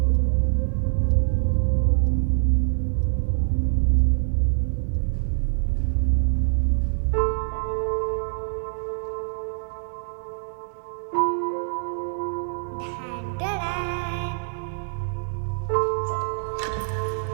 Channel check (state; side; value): silent; left; 62 dB below the other